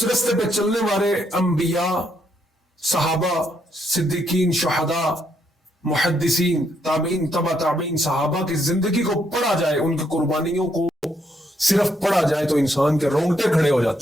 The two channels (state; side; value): normal; both; correlation 0.74